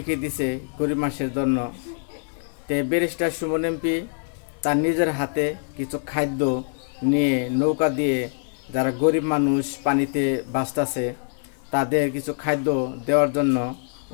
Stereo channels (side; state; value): right; silent; digital silence